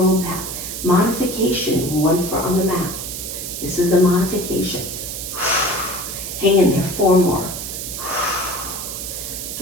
back. Modification, 1 foot on the mat. This is the modification. Hang in there, 4 more.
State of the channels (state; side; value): noise; right; hiss, 6 dB below the sound